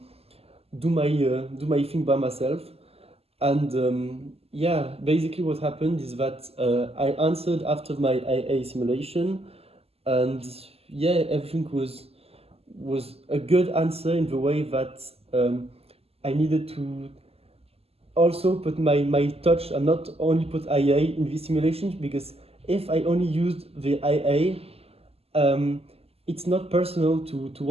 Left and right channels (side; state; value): left; late; 0.29 ms